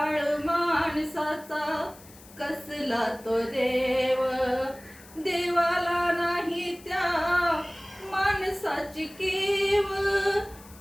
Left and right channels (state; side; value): noise; left; hiss, 22 dB below the sound